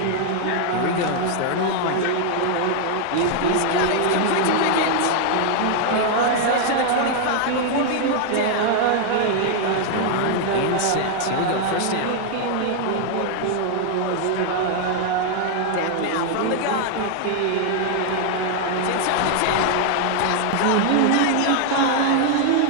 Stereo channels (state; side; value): different; both; correlation 0.00